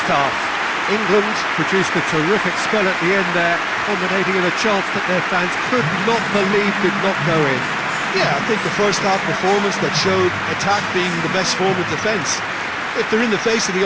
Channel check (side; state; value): both; identical; correlation 1.00